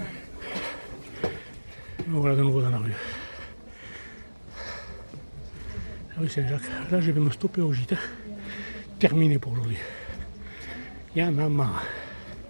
Voilà de nouveau dans la rue. La rue Saint-Jacques. Là je vais me stopper au gîte. Terminé pour aujourd'hui. Il y en a marre.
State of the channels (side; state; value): both; inverted; correlation -1.00